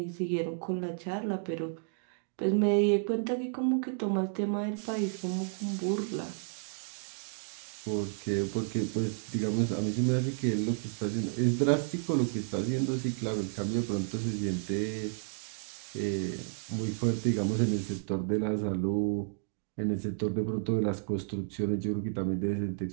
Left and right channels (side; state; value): left; silent; digital silence